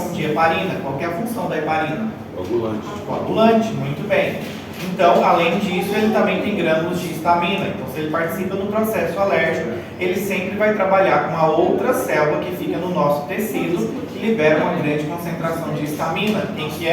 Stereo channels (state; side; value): identical; both; correlation 1.00